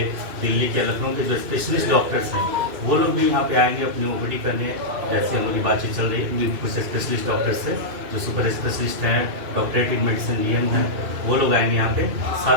दिल्ली के, लखनऊ के जो स्पेशलिस्ट डॉक्टर्स हैं, वो लोग भी यहाँ पे आएंगे अपनी ओपीडी करने। जैसे हम लोग की बातचीत चल रही है कुछ स्पेशलिस्ट डॉक्टर्स से, जो सुपर स्पेशलिस्ट हैं, डॉक्टरेट इन मेडिसिन डीएम हैं, वो लोग आएंगे यहाँ पे।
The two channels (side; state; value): left; late; 2.5 ms